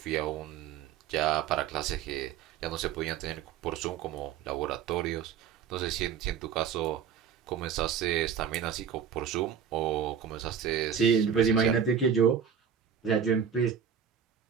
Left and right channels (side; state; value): left; quieter; 7.7 dB